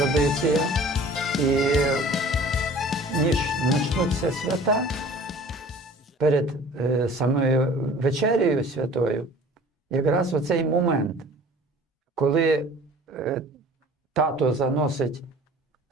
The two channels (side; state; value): both; normal; correlation 0.47